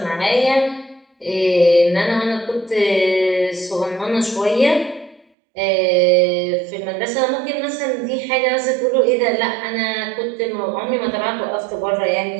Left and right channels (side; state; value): left; drops out; at 5.2 s